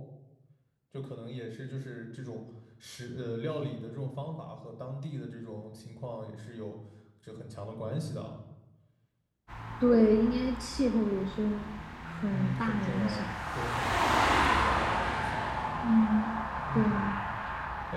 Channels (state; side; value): identical; both; correlation 1.00